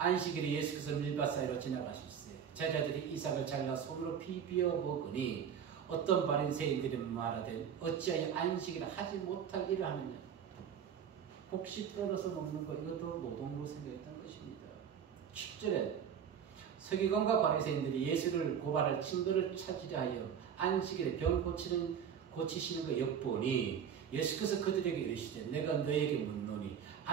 예수께서 밀밭 사이로 지나가실세 제자들이 이삭을 잘라 손으로 비비어 먹으니 어떤 바리새인들이 말하되 어찌하여 안식일에 하지 못할 일을 하느냐. 혹시 떨어서 먹는 것 이것도 노동으로 생각했던 것입니다. 10절에 서기관과 바리새인들이 예수를 고발할 증거를 찾으려 하여 안식일에 병 고치시는 것 엿보니 예수께서 그들에게 이르시되 내가 너희에게 묻노니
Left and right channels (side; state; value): left; quieter; 8.0 dB